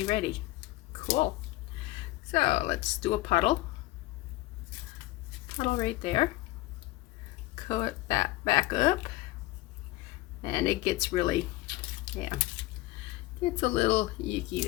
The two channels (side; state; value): right; quieter; 18.4 dB